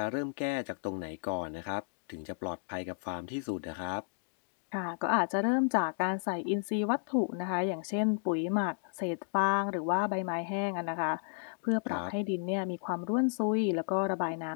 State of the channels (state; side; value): silent; right; digital silence